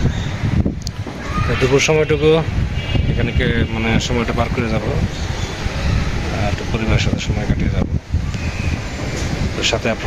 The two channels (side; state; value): both; identical; correlation 1.00